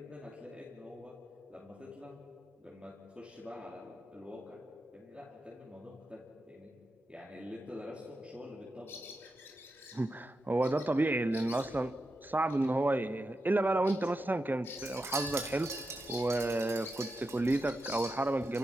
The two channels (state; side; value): normal; both; correlation 0.88